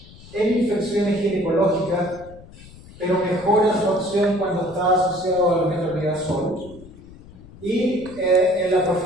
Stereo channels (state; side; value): noise; left; rumble, 20 dB below the sound